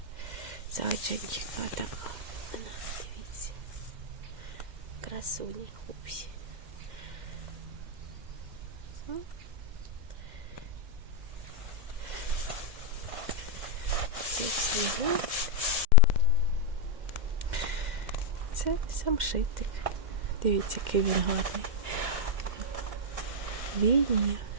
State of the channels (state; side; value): late; left; 2.1 ms